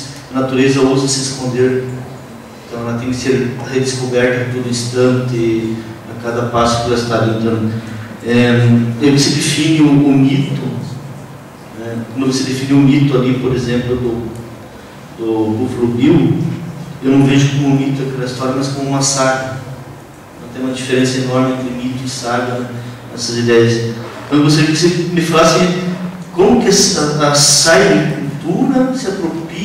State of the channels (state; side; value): identical; both; correlation 1.00